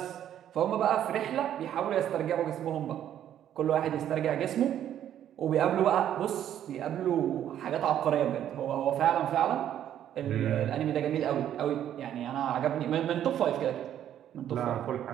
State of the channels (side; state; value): left; quieter; 10.7 dB